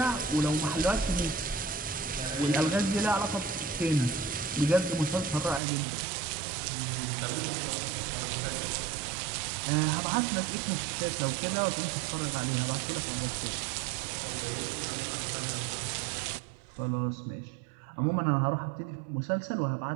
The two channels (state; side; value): drops out; left; at 5.6 s